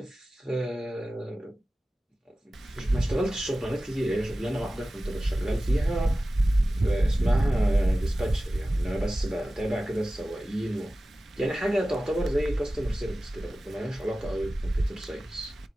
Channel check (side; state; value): both; normal; correlation 0.95